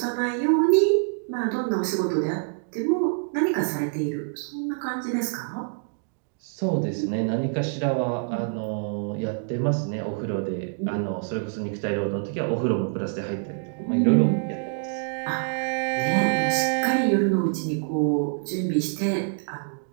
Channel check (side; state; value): left; silent; digital silence